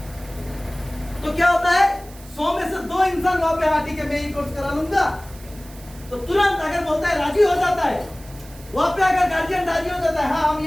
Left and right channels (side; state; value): right; noise; hiss, 21 dB below the sound